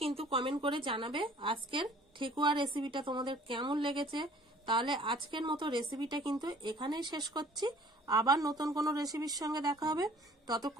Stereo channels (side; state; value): both; normal; correlation 0.53